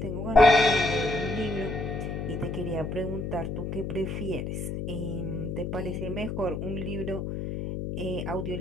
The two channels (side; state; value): left; noise; hum, 4 dB below the sound